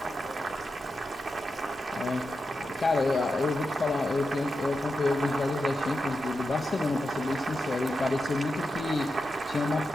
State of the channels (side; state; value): both; normal; correlation 0.88